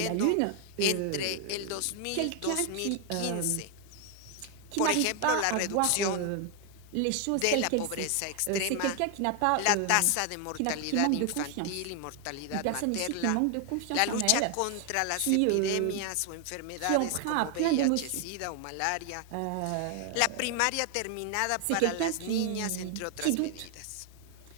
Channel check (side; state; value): both; different; correlation 0.01